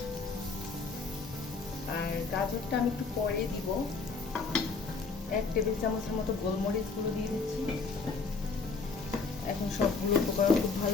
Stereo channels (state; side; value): quieter; right; 4.4 dB